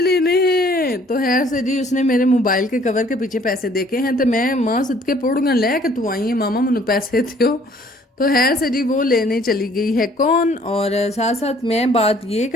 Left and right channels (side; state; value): both; normal; correlation 0.58